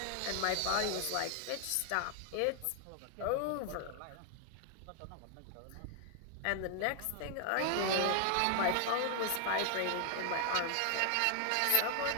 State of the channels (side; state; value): both; different; correlation 0.00